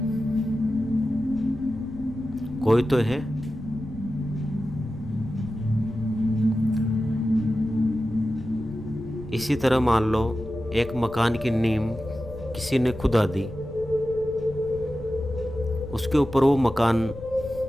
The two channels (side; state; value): left; noise; rumble, 15 dB below the sound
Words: कोई तो है। इसी तरह मान लो एक मकान की नींव किसी ने खुदा दी, उसके ऊपर वो मकान